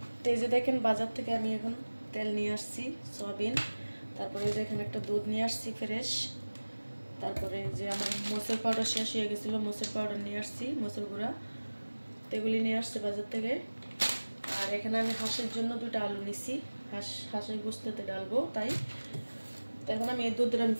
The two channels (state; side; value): inverted; both; correlation -1.00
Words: তো এই যে দেখেন বাজার থেকে আমি এখন তেল নিয়ে আসছি সয়াবিন। তারপরে দেখেন একটা দুধ নিয়ে আসছি ফ্রেশ। তারপরে যে আমার মোচের পাউডার শেষ হয়ে গেছিলো, মোচের পাউডার নিয়ে আসছি, মোচের গুঁড়া, এগুলি নিয়ে আসছে বাজার থেকে। আর এখানে আমি হাঁসের জন্য 2টা আলু নিছি, হাঁসের গোস্ততে ডালবো তাই। তো এখন আমি এই দুধটা আমি